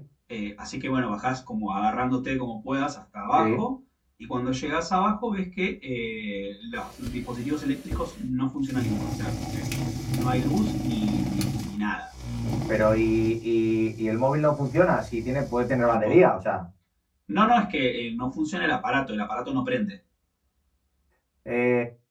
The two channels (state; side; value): identical; both; correlation 1.00